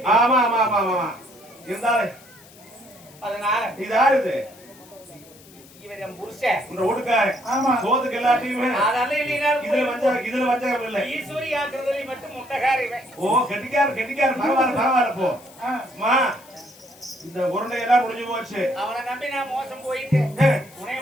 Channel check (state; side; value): noise; left; hiss, 23 dB below the sound